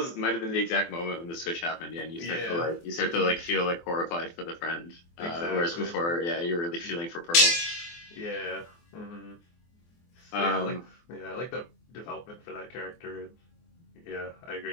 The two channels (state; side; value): late; right; 24 ms